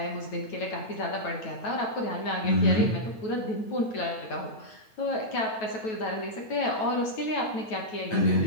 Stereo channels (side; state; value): right; late; 9.2 ms